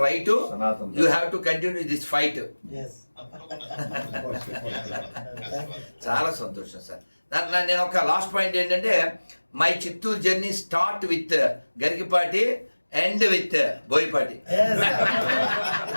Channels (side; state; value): both; inverted; correlation -1.00